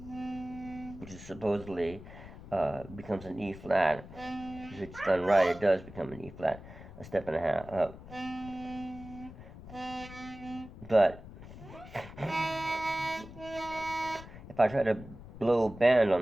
which is supposedly becomes an E flat. If it's done right, it does become an E flat, a step and a half up. But if I try to blow bend on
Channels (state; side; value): noise; left; rumble, 15 dB below the sound